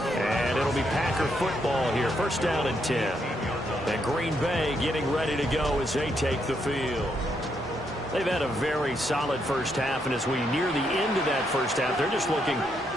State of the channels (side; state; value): both; normal; correlation 0.77